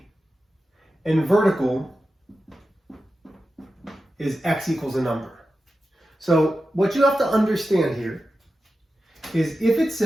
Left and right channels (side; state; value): both; normal; correlation 0.92